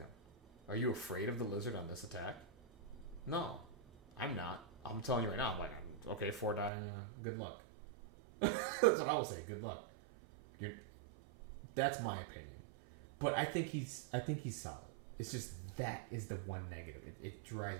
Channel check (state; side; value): drops out; left; at 6.7 s